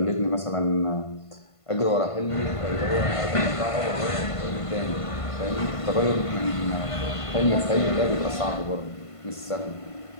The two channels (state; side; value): late; right; 1.5 ms